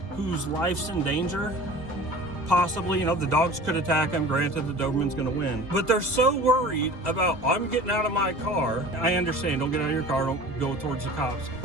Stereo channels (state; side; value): late; left; 2.2 ms